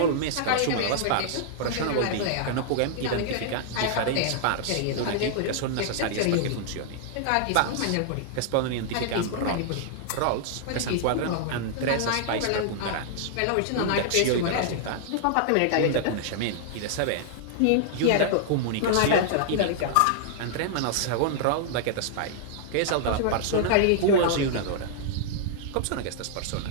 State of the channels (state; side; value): different; both; correlation -0.01